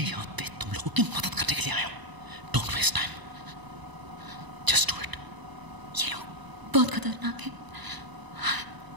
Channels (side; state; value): left; late; 1.0 ms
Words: पे तुम लोगों की मदद करने के लिए आया हूँ। Don't waste time, just do it. ये लोग बहुत खतरनाक है।